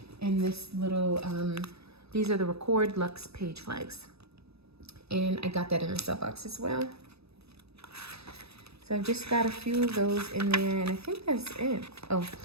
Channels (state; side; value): late; left; 0.78 ms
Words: and this little, these are the Record Luxe page flags. And I got that in a sub box as well. So I've just got a few of those in there, and I think that's it. Oh,